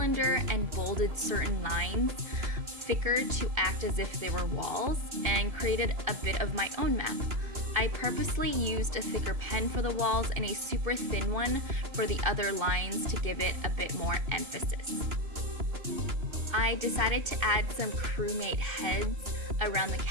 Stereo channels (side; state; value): left; late; 2.7 ms